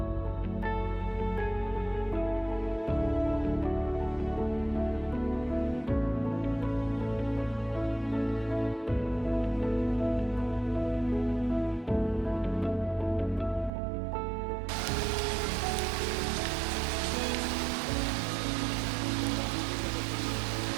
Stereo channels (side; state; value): left; drops out; at 13.7 s